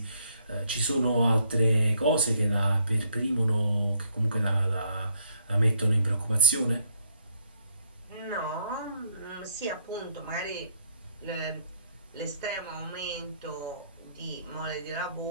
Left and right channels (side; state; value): both; inverted; correlation -0.67